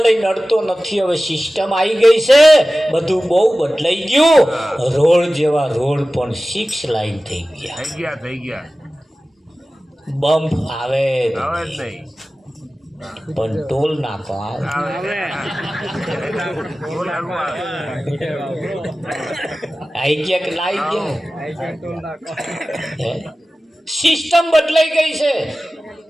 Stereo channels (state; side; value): normal; both; correlation 0.96